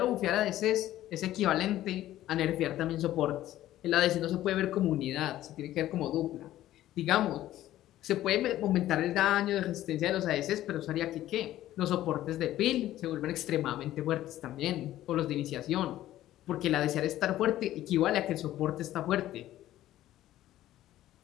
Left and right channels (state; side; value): quieter; right; 13.9 dB